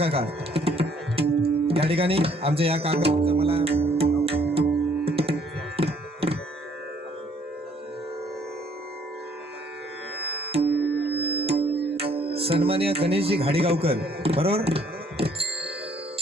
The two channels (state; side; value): normal; both; correlation 0.63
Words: या ठिकाणी आमच्या या काका मला सन्माननीय गणेशजी घाडीगावकर, बरोबर,